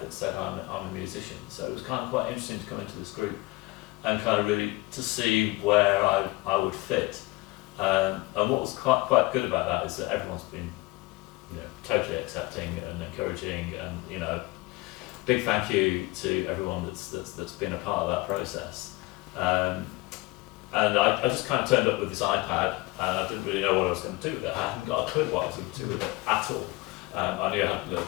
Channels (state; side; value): quieter; right; 22.1 dB